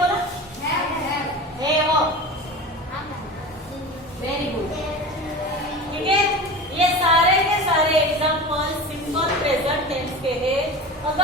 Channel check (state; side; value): normal; both; correlation 0.32